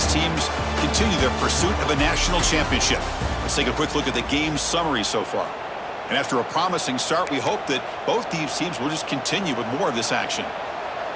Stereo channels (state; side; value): identical; both; correlation 1.00